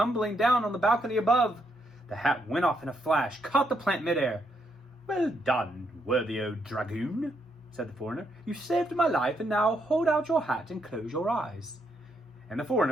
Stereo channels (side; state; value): both; normal; correlation 0.77